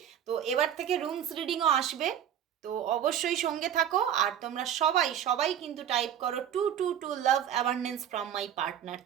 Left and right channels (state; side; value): quieter; left; 9.7 dB